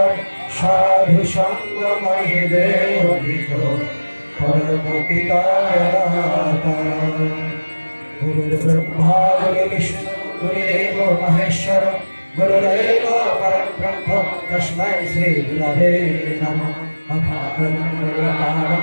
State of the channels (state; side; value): inverted; both; correlation -1.00